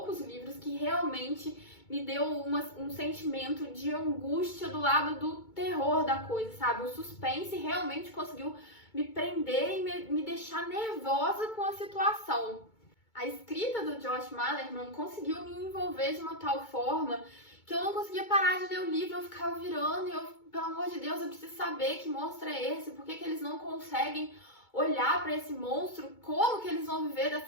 livros que realmente me deu um sentimento de angústia do lado do terror da coisa, sabe? O suspense realmente conseguiu me prender e me deixar nervosa com a situação. A escrita do Josh Malerman conseguiu me envolver de uma tal forma que eu não conseguia parar de ler o livro, eu ficava virando e eu, pelo amor de Deus, eu preciso saber que monstro é esse, por que eles não conseguem olhar para esse monstro, como que eles vão viver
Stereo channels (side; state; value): right; late; 2.2 ms